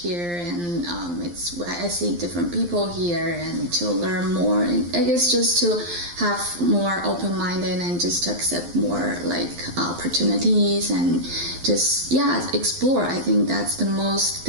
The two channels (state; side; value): late; left; 11 ms